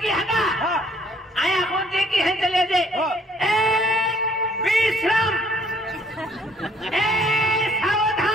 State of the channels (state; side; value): normal; both; correlation 0.62